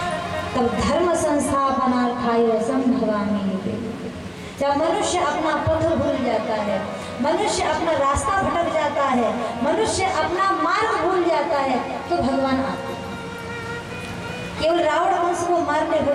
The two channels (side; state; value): both; identical; correlation 1.00